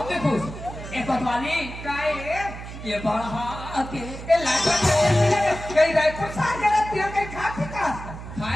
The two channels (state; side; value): noise; right; hum, 11 dB below the sound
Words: भी खुश एक कोतवाली काय ये बढ़ा के ये लाज कहीं रायपुर सार गया तिया कहीं खा पी का